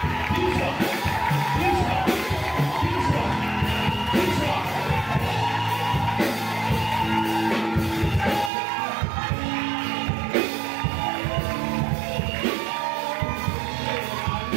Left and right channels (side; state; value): left; drops out; at 8.5 s